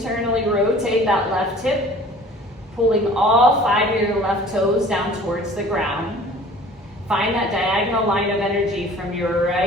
rotate that left hip, pulling all 5 of your left toes down towards the ground. Find that diagonal line of energy from your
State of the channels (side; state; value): both; normal; correlation 0.48